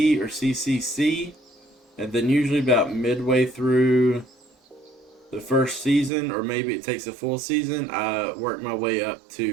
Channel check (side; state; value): left; drops out; at 6.1 s